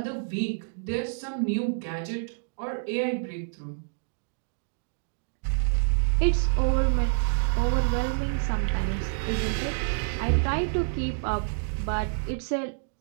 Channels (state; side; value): silent; left; digital silence